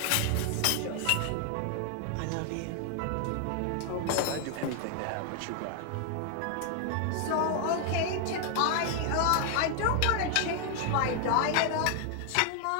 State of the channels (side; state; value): both; different; correlation 0.00